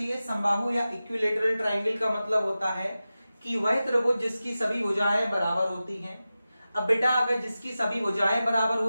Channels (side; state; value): both; inverted; correlation -0.94